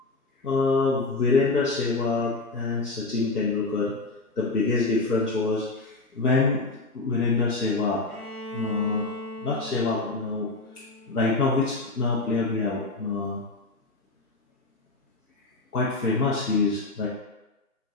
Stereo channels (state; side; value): quieter; right; 3.4 dB